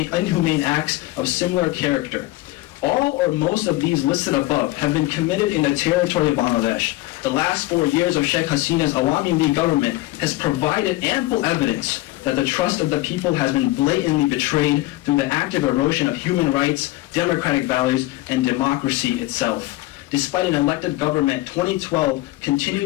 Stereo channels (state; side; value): quieter; right; 18.2 dB